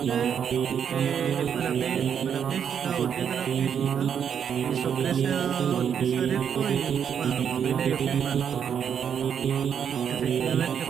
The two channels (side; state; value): left; quieter; 8.0 dB